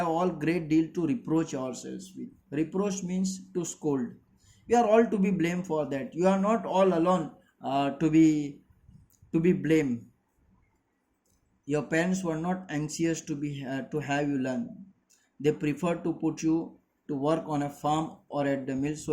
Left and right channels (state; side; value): identical; both; correlation 1.00